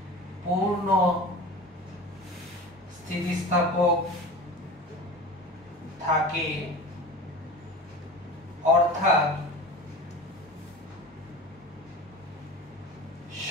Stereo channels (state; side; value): normal; both; correlation 0.34